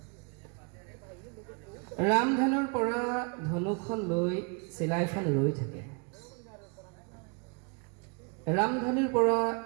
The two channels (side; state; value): left; quieter; 35.3 dB